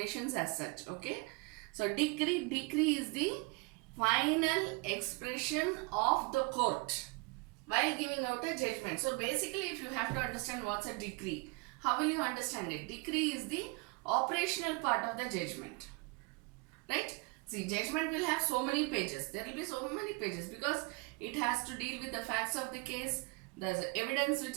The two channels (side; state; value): left; quieter; 28.9 dB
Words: as such. Okay. So decree is the final expression of the court while giving out a judgment. So basically, if you have to understand what's a decree, how will you understand it? Decree is the operational part of the judgment. Right? See, judgment will have so many pages. There will be so many pages because it has to deal with the facts of the case, the evidence which